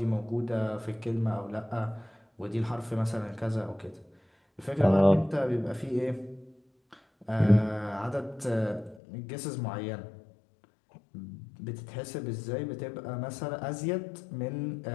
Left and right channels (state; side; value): drops out; right; at 9.0 s